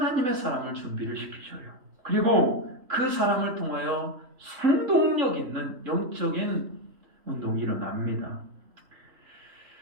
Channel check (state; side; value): late; left; 3.7 ms